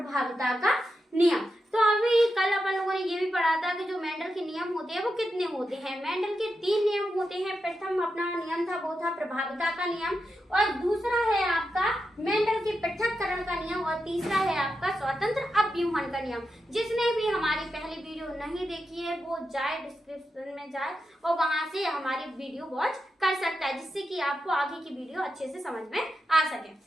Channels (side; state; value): both; normal; correlation 0.88